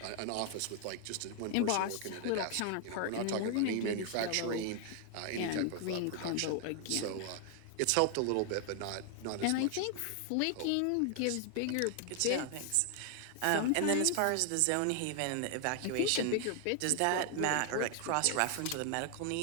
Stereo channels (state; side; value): different; both; correlation 0.00